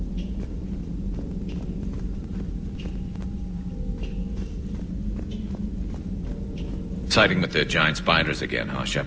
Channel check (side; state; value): both; identical; correlation 1.00